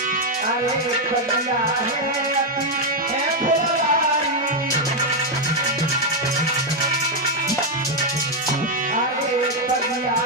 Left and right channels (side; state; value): both; normal; correlation 0.01